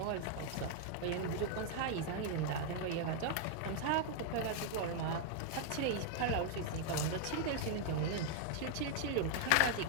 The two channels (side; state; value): both; different; correlation 0.00